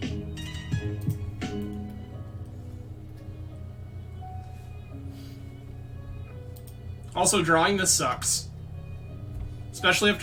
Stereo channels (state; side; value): identical; both; correlation 1.00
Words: Also, drawing this sucks. Especially